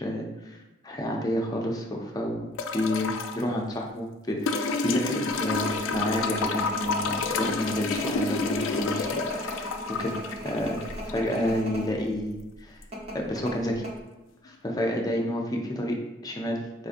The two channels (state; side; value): normal; both; correlation 0.54